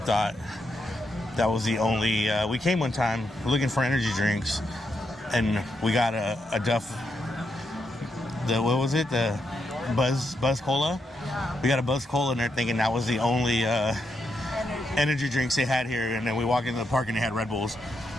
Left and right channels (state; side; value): normal; both; correlation 0.82